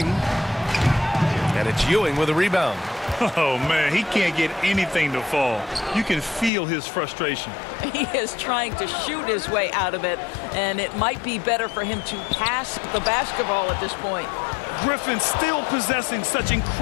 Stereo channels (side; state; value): right; drops out; at 6.5 s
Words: And it's Ewing with a rebound. Oh, man, he can't get anything to fall. You can feel his frustration. He is trying to shoot his way out of it, and it might be better for him to pass the basketball at this point. Griffin still possessing such